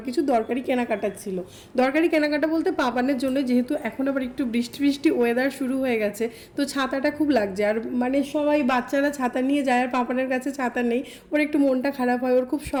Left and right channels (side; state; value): both; identical; correlation 1.00